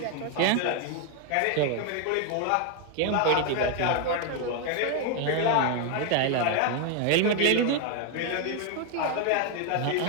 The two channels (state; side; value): different; both; correlation 0.01